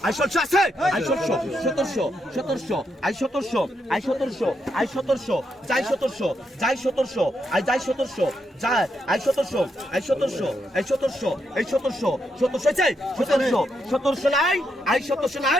I 1600 আছে আই 1700 আই 1700 আই 1700 আই 1700 যাই 1700 যাই 1700 আই যাই 1700 যাই আই 1700 আই 1700 আই 1700 এই 1700 চাই 1700 নাই আই 1700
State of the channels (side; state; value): both; normal; correlation 0.81